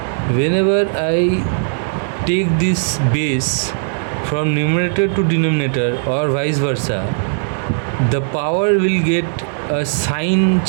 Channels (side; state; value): left; silent; digital silence